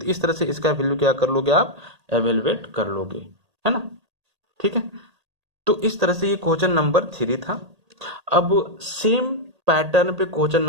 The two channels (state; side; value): late; left; 1.8 ms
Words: इस तरह से इसका वैल्यू क्या कर लोगे, आप एवेलुएट कर लोगे, है ना। ठीक है, तो इस तरह से ये क्वेश्चन नंबर 3 था। अब सेम पैटर्न पे क्वेश्चन